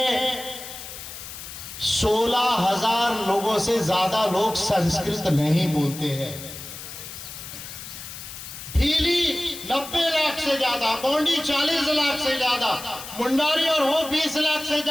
16,000 लोगों से ज्यादा लोग संस्कृत नहीं बोलते हैं। भीली 90 लाख से ज्यादा, गोंडी 40 लाख से ज्यादा, मुंडारी और हो 20 लाख से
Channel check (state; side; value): noise; left; hiss, 11 dB below the sound